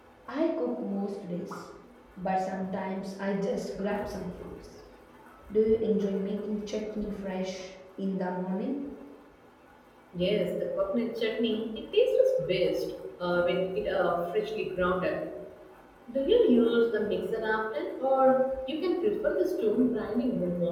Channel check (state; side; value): identical; both; correlation 1.00